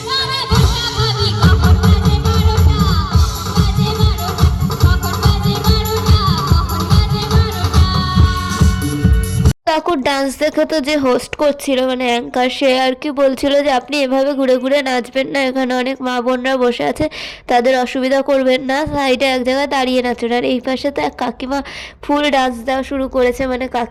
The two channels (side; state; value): both; identical; correlation 1.00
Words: কাকুর ডান্স দেখে তো যে হোস্ট করছিল, মানে অ্যাঙ্কার, সে আর কি বলছিল যে আপনি এভাবে ঘুরে ঘুরে নাচবেন না, এখানে অনেক মা বোনরা বসে আছে, তাদের অসুবিধা করবেন না, সাইডে এক জায়গায় দাঁড়িয়ে নাচবেন। আর এই পাশে তো এক কাকিমা ফুল ডান্স দেওয়া শুরু করেছে, মানে